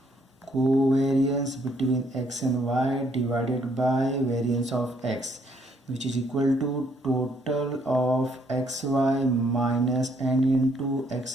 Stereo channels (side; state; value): both; normal; correlation 0.69